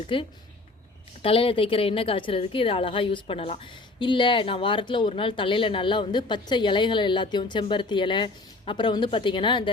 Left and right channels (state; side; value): quieter; right; 3.2 dB